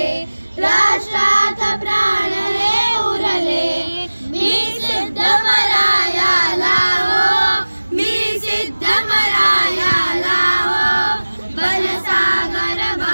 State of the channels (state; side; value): inverted; both; correlation -1.00